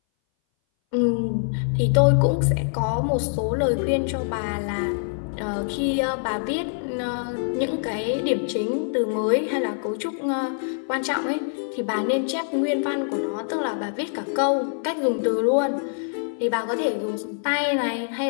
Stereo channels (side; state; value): right; silent; 59 dB below the other